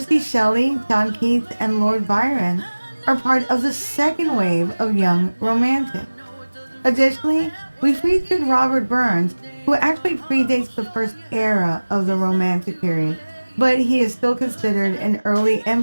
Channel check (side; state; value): both; inverted; correlation -1.00